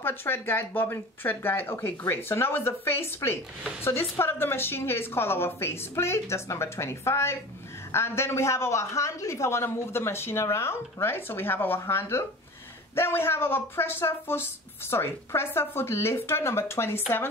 thread guide, bobbin thread guide. Okay, great. So now is the face plate. So this part of the machine here is called our face plate. That's number 25. And then we have our handle if I want to move the machine around, right? So we have our handle. Then we have our presser foot lifter, number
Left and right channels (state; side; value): normal; both; correlation 0.37